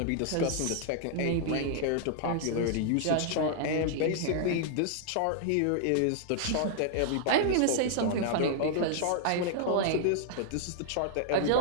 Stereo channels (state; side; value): different; both; correlation -0.01